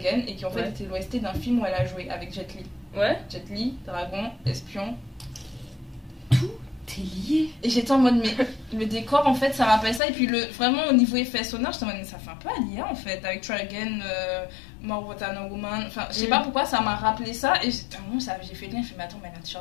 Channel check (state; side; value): drops out; right; at 10.0 s